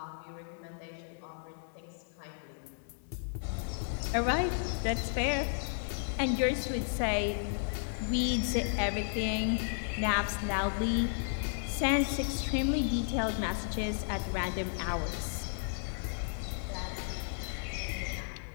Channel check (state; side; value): silent; right; 55 dB below the other